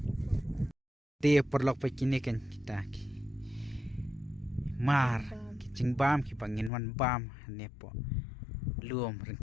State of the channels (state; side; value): drops out; right; at 6.7 s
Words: dia perlok pe kini kan kita mar kicing bam ki pangin wan bam ne po luom